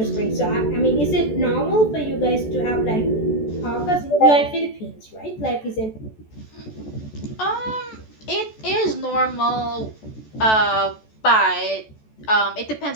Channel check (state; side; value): late; right; 14 ms